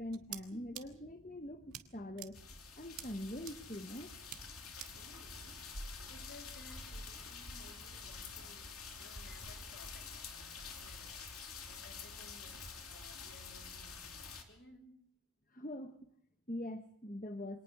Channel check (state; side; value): normal; both; correlation 0.56